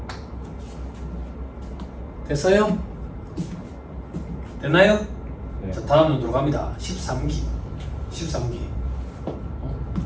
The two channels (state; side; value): identical; both; correlation 1.00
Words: 됐어요? 됐나요? 네. 자, 다음 눈으로 갑니다. 13기